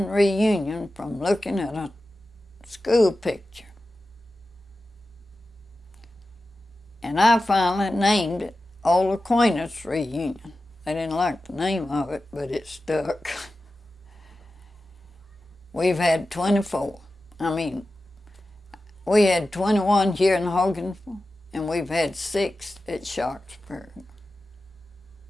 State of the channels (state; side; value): normal; both; correlation 0.93